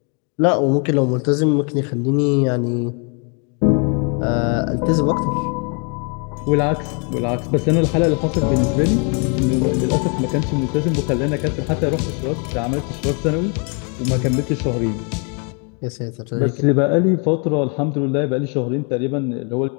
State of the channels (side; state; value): right; quieter; 36.6 dB